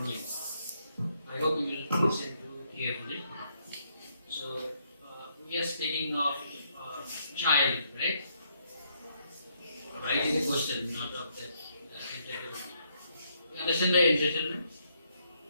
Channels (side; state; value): both; inverted; correlation -0.74